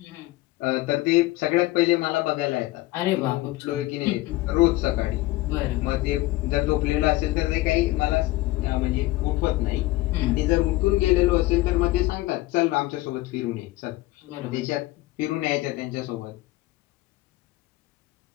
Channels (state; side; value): quieter; right; 18.6 dB